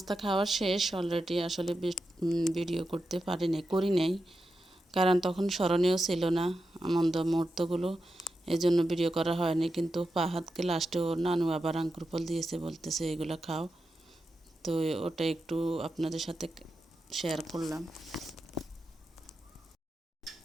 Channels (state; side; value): normal; both; correlation 0.89